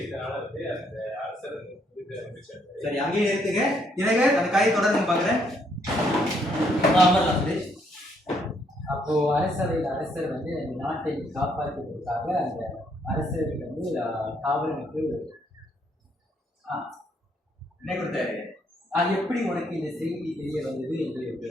வந்து அந்த அரசர் வந்து மகிழ்ச்சியா இருந்தாரு. சரி, அங்கேயே நிறுத்துங்க. எனக்கு அந்த கதையை தொடர்ந்து பாக்குறேன். அப்போ அரசர் வந்து அந்த நாட்டை காப்பாற்றுவதற்காக அந்த அரசருக்கு வந்து காவலனுக்கு என்ன கொடுத்தாரு? அது எப்படி உனக்கு இந்த செய்தி தெரிய வந்தது என்று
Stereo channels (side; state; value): both; normal; correlation 0.71